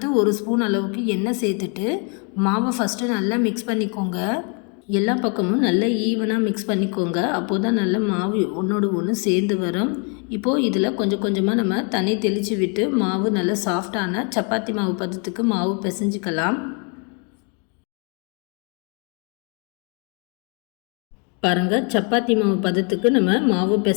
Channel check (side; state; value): right; quieter; 36.4 dB